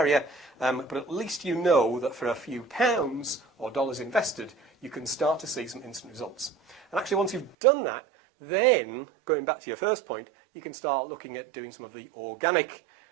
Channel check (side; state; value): left; drops out; at 7.6 s